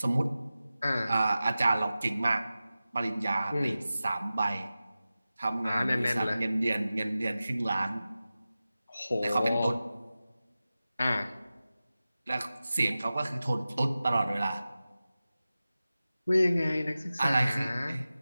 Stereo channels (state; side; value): inverted; both; correlation -0.95